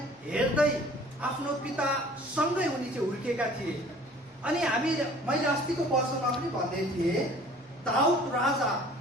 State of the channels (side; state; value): both; normal; correlation 0.50